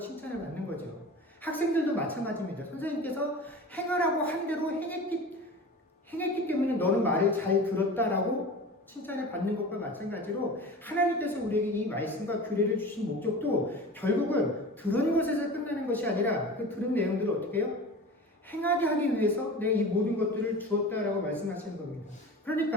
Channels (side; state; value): both; normal; correlation 0.35